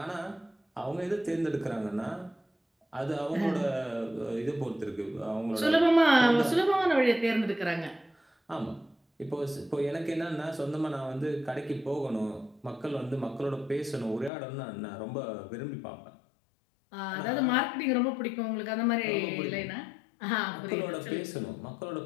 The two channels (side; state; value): right; drops out; at 14.3 s